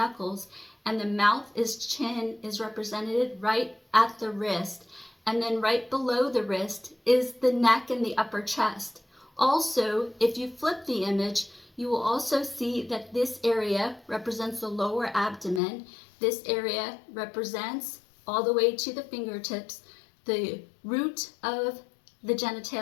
and the mouth chin is represented right at the wrist. And then right below the wrist is the neck and the upper chest. Also, if you flip the image, you will also see that this area represents the lower abdomen. This area represents all the way to the fingertips, the root of the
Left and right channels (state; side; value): drops out; right; at 15.6 s